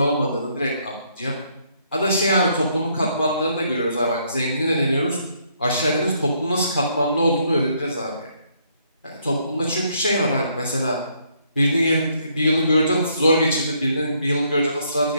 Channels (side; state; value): both; inverted; correlation -0.71